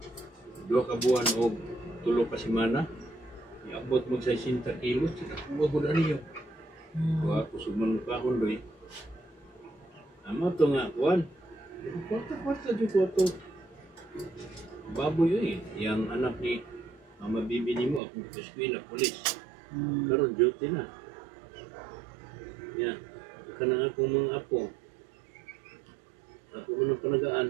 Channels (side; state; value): left; drops out; at 18.0 s